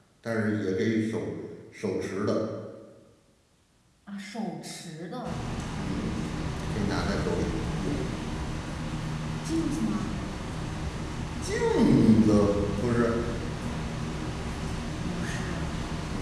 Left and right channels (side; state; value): both; identical; correlation 1.00